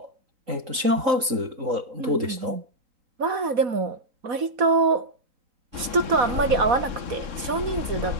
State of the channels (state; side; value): late; left; 3.8 ms